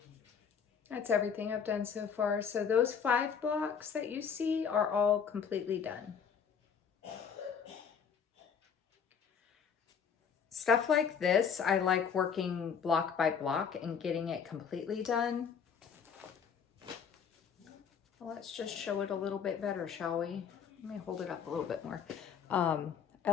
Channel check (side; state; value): right; quieter; 6.9 dB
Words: That's everything I've done so far. So those 5 blocks that you see are all completely done. Stuff like this, I like working block by block and getting it completely done. Well, let's just show it a little bit better, shall we? Let me hold it up a little bit more. I